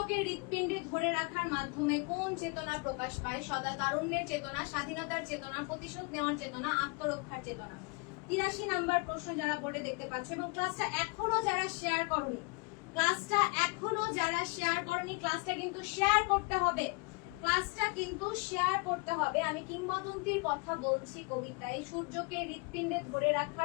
হৃৎপিণ্ডে ধরে রাখার মাধ্যমে কোন চেতনা প্রকাশ পায়? সদা তারুণ্যের চেতনা, স্বাধীনতার চেতনা, প্রতিশোধ নেওয়ার চেতনা, আত্মরক্ষার চেতনা। 83 নাম্বার প্রশ্ন যারা বোর্ডে দেখতে পাচ্ছ এবং ক্লাসটা এখনো যারা শেয়ার করনি, ক্লাসটা কিন্তু শেয়ার করতে হবে, আমি কিংবদন্তির কথা বলছি কবিতায় সূর্যকে হৃৎপিণ্ডে ধরে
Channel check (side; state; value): right; quieter; 30.0 dB